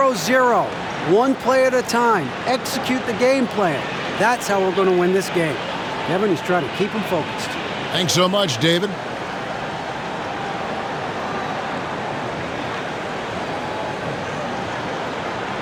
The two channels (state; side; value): identical; both; correlation 1.00